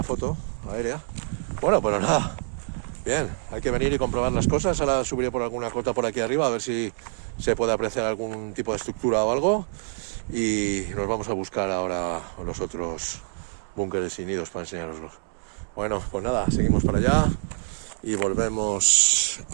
foto aérea. Bueno, pues nada, bien, hay que venir y comprobar las cosas. Ahora subiré por alguna cota por aquí arriba a ver si se puede apreciar algún tipo de estructura o algo, y nos vamos a buscar ahora los otros búnkeres y nidos para enseñaroslos. Bueno, pues nada, seguimos para allá y volvemos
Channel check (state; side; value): silent; left; digital silence